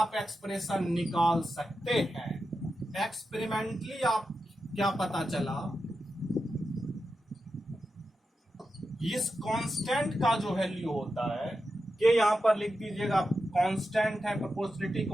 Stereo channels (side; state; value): both; normal; correlation 0.89